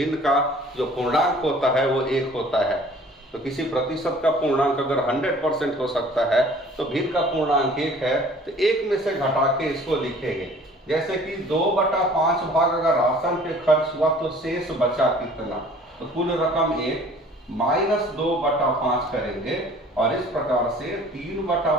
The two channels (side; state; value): both; normal; correlation 0.51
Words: का जो पूर्णांक होता है वो 1 होता है। तो किसी प्रतिशत का पूर्णांक अगर 100% हो सकता है तो भिन्न का पूर्णांक 1 है, तो 1 में से घटा के इसको लिखेंगे। जैसे कि 2/5 भाग अगर राशन पे खर्च हुआ तो शेष बचा कितना, तो कुल रकम 1 माइनस 2/5 करेंगे और इस प्रकार से